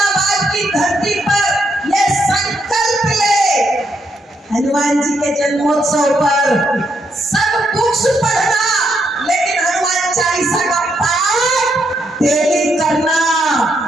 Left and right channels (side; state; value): both; normal; correlation 0.77